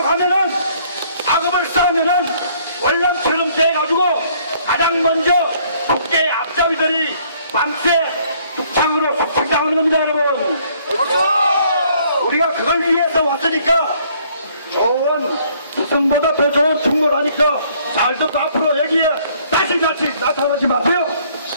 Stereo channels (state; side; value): inverted; both; correlation -0.63